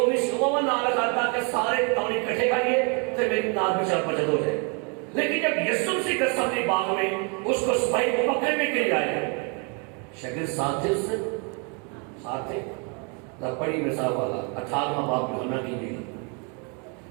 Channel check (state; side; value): quieter; left; 35.3 dB